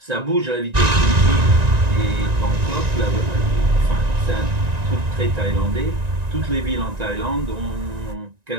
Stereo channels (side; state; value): left; late; 1.9 ms